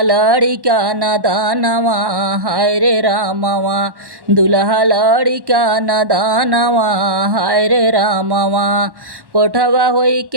लड़िका नदानवा हाय रे रामवा दुल्हा लड़िका नदानवा हाय रे रामवा कोठवा होई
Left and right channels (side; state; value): left; late; 1.1 ms